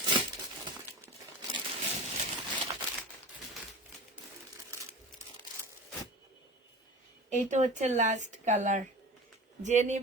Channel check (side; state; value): both; normal; correlation 0.34